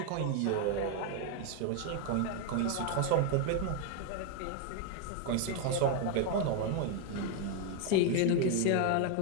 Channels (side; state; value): both; different; correlation 0.00